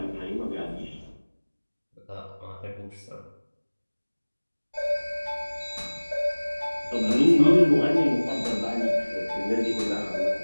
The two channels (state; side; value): inverted; both; correlation -1.00